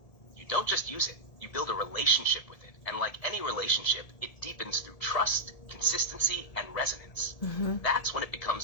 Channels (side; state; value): right; late; 1.8 ms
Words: You don't just use it, you build a relationship with it. And like any relationship, it deepens through trust, consistency, and resonance. That's when it becomes